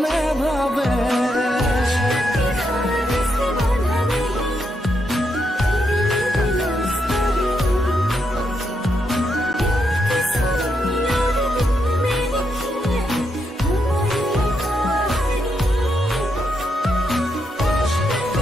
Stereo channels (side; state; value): both; normal; correlation 0.81